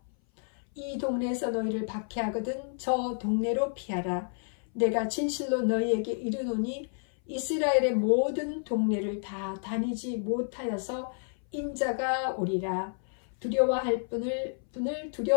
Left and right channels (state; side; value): silent; right; 58 dB below the other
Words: 이 동네에서 너희를 박해하거든 저 동네로 피하라. 내가 진실로 너희에게 이르노니 이스라엘의 모든 동네를 다 다니지 못하여서 인자가 오리라. 두려워할 분을